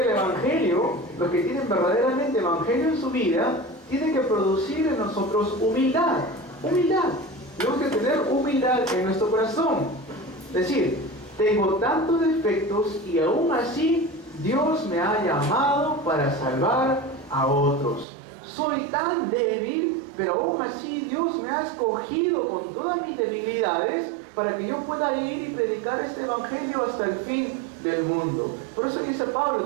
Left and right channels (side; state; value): left; drops out; at 18.1 s